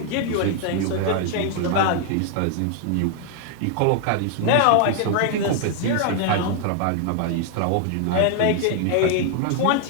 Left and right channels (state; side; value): different; both; correlation 0.00